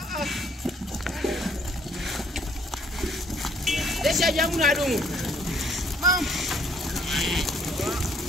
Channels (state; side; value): normal; both; correlation 0.64